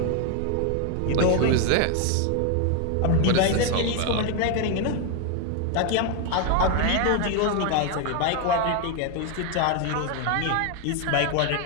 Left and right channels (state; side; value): different; both; correlation 0.01